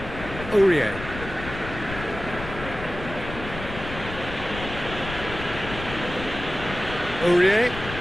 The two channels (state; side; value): noise; left; rumble, 10 dB below the sound